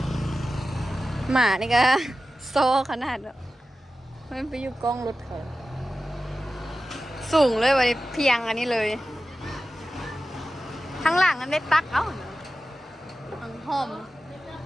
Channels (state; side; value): normal; both; correlation 0.94